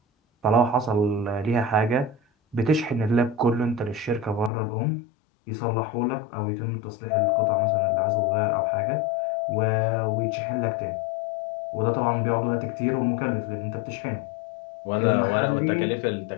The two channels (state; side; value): drops out; right; at 4.5 s